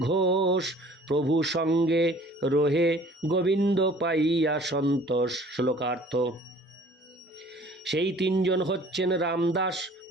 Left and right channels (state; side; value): normal; both; correlation 0.51